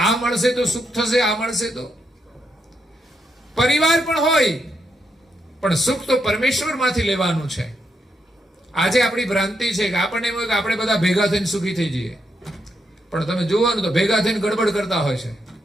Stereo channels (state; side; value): normal; both; correlation 0.80